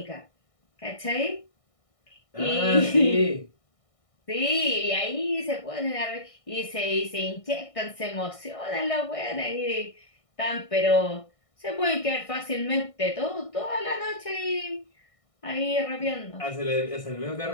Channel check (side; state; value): right; late; 1.6 ms